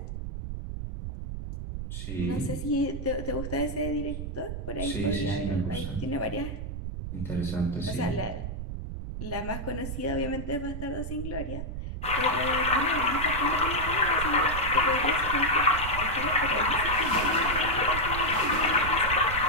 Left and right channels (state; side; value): noise; right; rumble, 6 dB below the sound